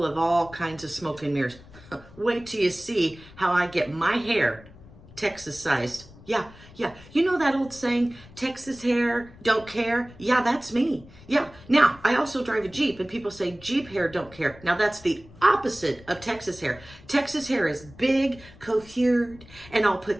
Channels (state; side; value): noise; left; rumble, 21 dB below the sound